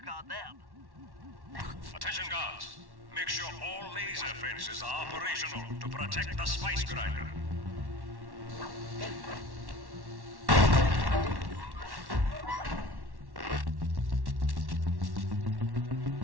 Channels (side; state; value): left; late; 1.1 ms